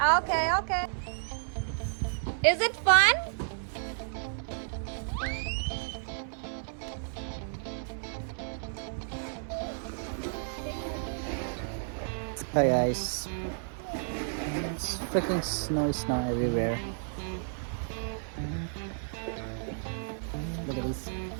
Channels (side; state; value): left; silent; 57 dB below the other